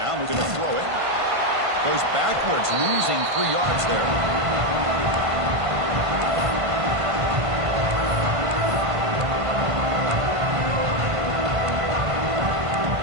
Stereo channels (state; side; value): late; left; 1.5 ms